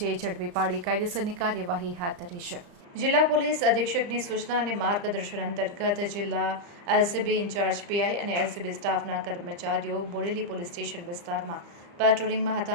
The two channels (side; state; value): left; late; 35 ms